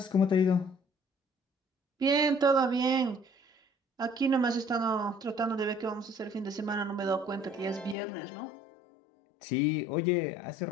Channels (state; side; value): drops out; right; at 8.0 s